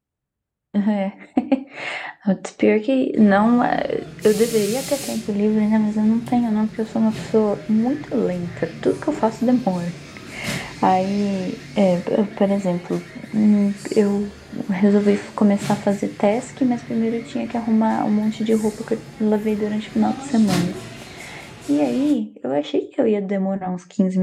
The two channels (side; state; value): both; identical; correlation 1.00